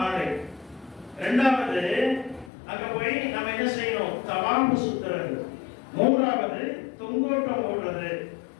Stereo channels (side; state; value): right; drops out; at 2.5 s